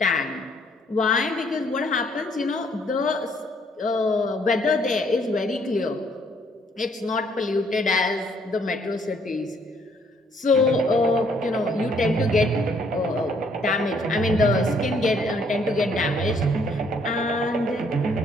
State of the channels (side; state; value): both; normal; correlation 0.66